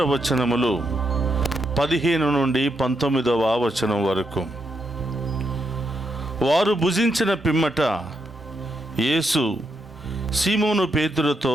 వచనములు 15 నుండి 19వ వచనం వరకు. వారు భుజించిన పిమ్మట యేసు సీమోను పేతురుతో,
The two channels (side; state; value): both; normal; correlation 0.81